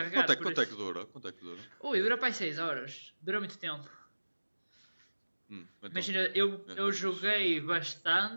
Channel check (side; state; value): both; inverted; correlation -1.00